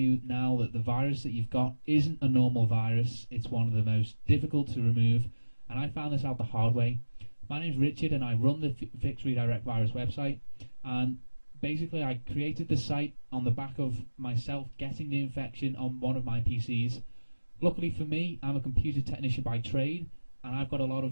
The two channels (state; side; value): inverted; both; correlation -1.00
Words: now that the virus that you've got isn't a normal virus. It's one of the most difficult to remove, and I found this out the hard way. My name's Richard and I run the Fix Redirect Virus website, and basically I created the site on the back of myself getting the infection on one of my PCs. Luckily for me, I'm a computer technician by trade, and I've got a lot